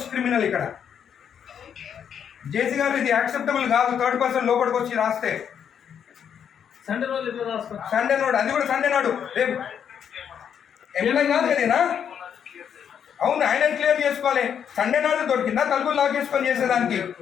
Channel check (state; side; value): quieter; right; 8.2 dB